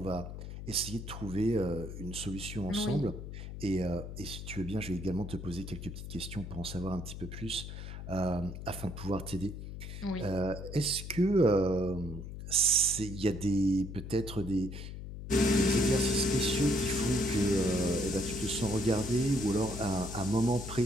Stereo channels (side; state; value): left; noise; hum, 9 dB below the sound